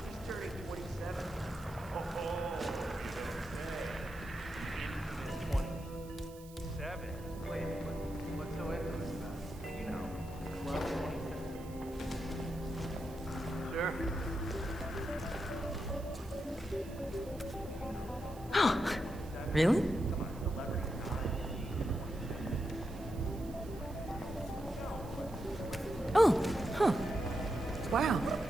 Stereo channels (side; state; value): right; noise; hiss, 21 dB below the sound